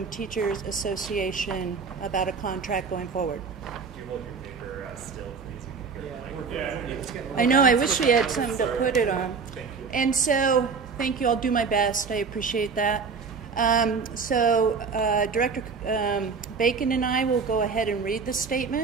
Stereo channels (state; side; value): quieter; left; 5.3 dB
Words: Teachers Association about a contract going forward. Do you hold your paper still, please? I know, I wish we had something to put it on. Thank you. And so, thank you, I'll do my best, I appreciate that. Director Bacon and I will go ahead and read the